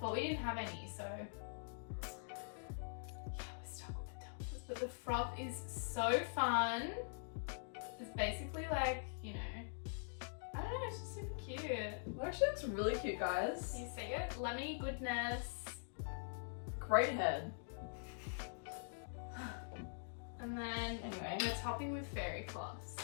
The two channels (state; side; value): silent; right; digital silence